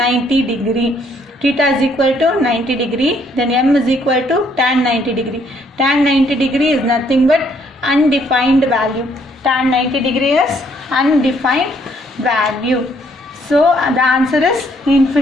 degree. Theta is equal to 90 degree. Then M is equal to tan 90 degree. Tan 90 degree is nothing but undefined value. Tan 90 degree is undefined value. So the answer is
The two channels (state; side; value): normal; both; correlation 0.67